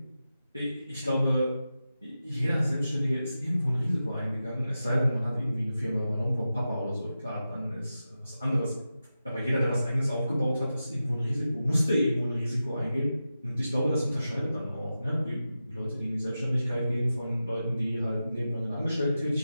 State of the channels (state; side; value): inverted; both; correlation -0.92